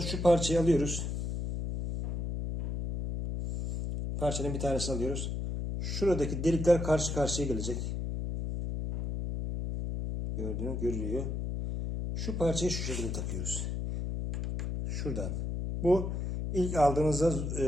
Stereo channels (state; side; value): noise; left; hum, 2 dB below the sound